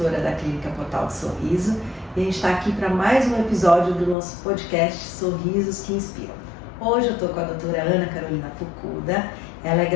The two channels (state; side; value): drops out; right; at 4.2 s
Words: da Clínica Portal do Sorriso e a gente está aqui para mais um episódio do nosso podcast Sorrisos que Inspiram. Hoje eu estou com a doutora Ana Carolina Fukuda, ela é